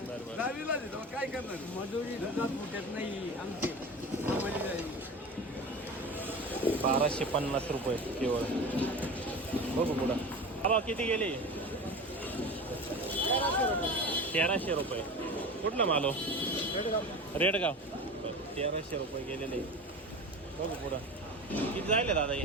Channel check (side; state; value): both; normal; correlation 0.32